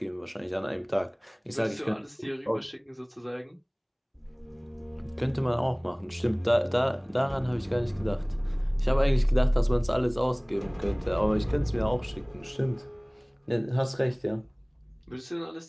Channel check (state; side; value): identical; both; correlation 1.00